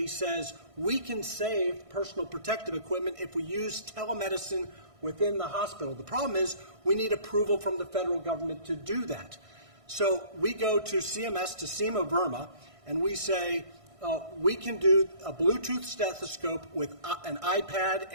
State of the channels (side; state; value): left; late; 1.6 ms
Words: says, we can save personal protective equipment if we use telemedicine within the hospital. The problem is we need approval from the federal government to do that. So we go to CMS, to Seema Verma, and we say, we can do a Bluetooth stethoscope with an iPad